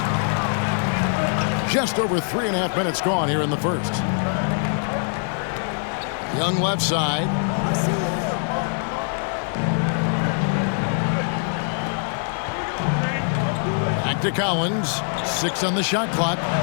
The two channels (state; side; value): silent; right; digital silence